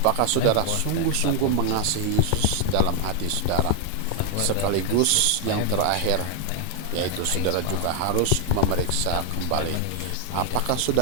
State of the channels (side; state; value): both; different; correlation 0.00